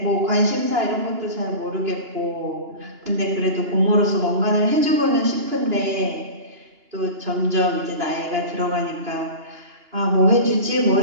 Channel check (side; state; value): left; late; 2.9 ms